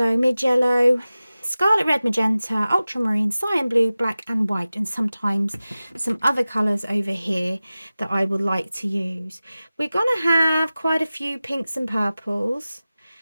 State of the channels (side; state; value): both; inverted; correlation -0.96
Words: mid yellow, scarlet red, magenta, ultramarine, cyan blue, black and white, and sometimes some other colours over here that I would like to use. We're going to have quite a few pinks and purples.